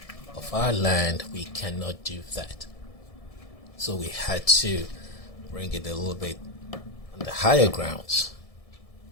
of our land, we cannot do that. So we had to bring it a little bit on the higher grounds.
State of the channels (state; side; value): late; right; 1.7 ms